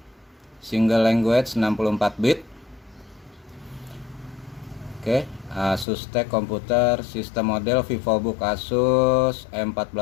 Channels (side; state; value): right; drops out; at 5.9 s